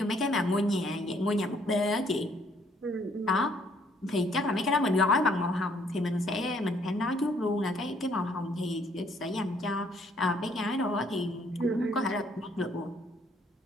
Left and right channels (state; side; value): normal; both; correlation 0.65